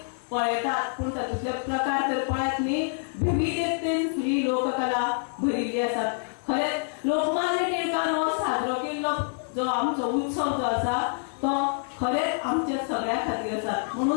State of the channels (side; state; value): right; silent; 60 dB below the other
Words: पळयतात, पूण तातूंतले प्रकार तर पळयत न्ही. विविधतेन ही लोककला भरिल्ली आसात. खरेंच लोकमान्य टिळकान हो साजरो केल्लो जो आमचो उत्सव जो आसा तो खरेंच आमच्या सगळ्या खातीर आसा.